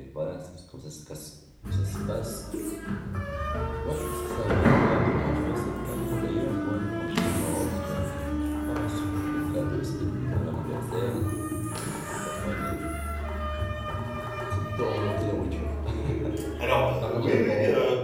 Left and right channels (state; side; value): identical; both; correlation 1.00